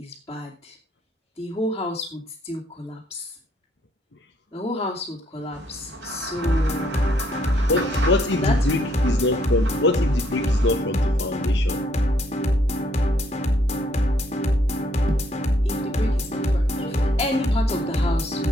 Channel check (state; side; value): normal; both; correlation 0.70